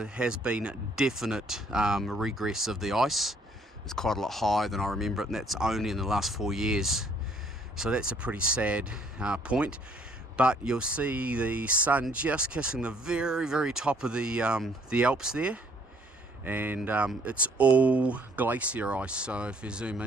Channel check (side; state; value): both; normal; correlation 0.63